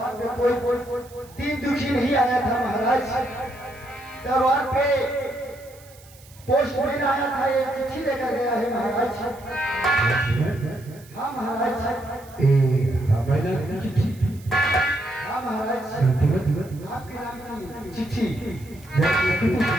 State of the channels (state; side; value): noise; right; hiss, 24 dB below the sound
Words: कोई 3 दुखी नहीं आया था महाराज। दरबार पे पोस्टमैन आया था एक चिट्ठी लेकर गया है महाराज। हाँ महाराज चिट्ठी। हाँ महाराज आपके नाम की चिट्ठी।